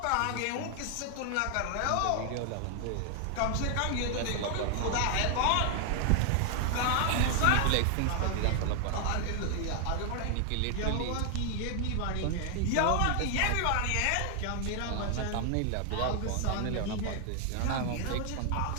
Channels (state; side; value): different; both; correlation 0.00